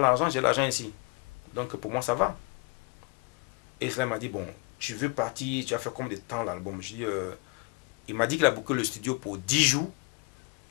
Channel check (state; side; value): quieter; right; 28.1 dB